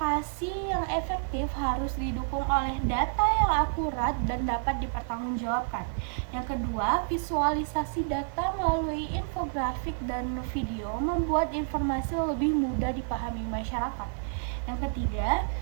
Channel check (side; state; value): left; silent; 58 dB below the other